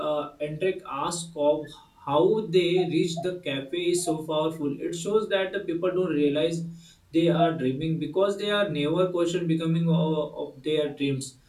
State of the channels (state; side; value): identical; both; correlation 1.00